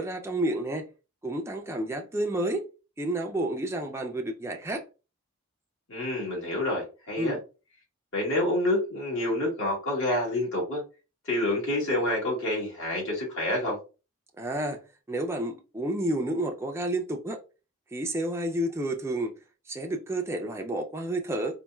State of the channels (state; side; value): normal; both; correlation 0.33